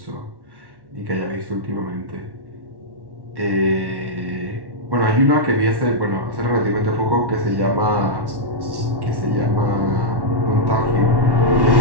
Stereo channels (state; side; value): late; left; 1.1 ms